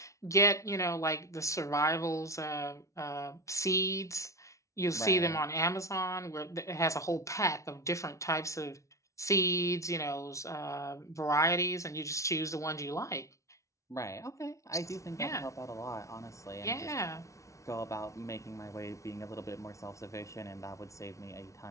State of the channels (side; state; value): right; late; 0.15 ms